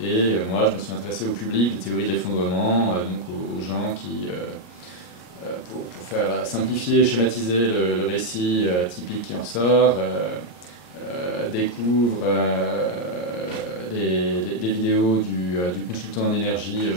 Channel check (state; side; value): late; right; 34 ms